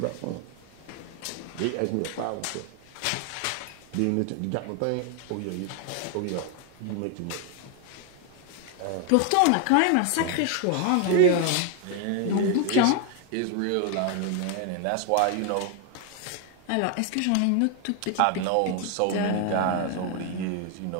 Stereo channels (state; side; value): different; both; correlation 0.01